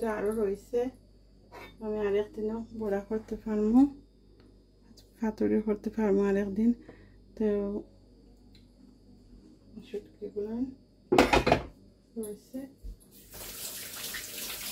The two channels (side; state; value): both; identical; correlation 1.00